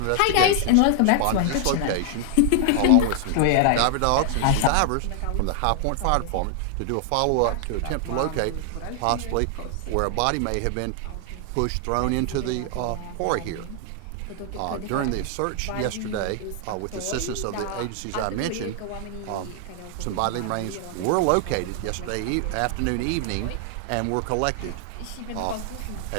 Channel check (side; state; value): both; different; correlation 0.00